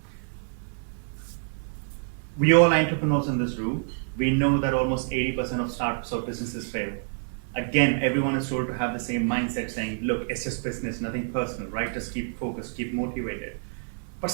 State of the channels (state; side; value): silent; left; 60 dB below the other